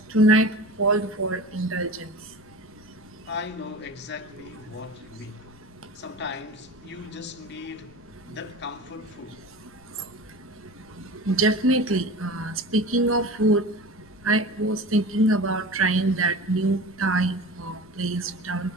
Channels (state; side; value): noise; left; rumble, 25 dB below the sound